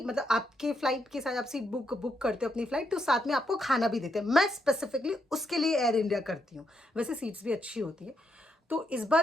आपके फ़्लाइट के साथ आप सीट बुक करते हो अपनी फ़्लाइट, तो साथ में आपको खाना भी देते हैं। मैं स्पेसिफिकली उसके लिए एयर इंडिया करती हूँ। वैसे सीट्स भी अच्छी होती है। तो इस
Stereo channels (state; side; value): normal; both; correlation 0.79